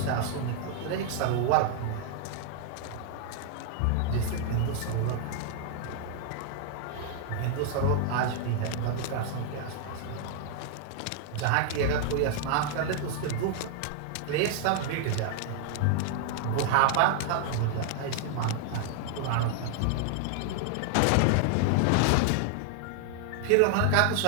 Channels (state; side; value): different; both; correlation 0.00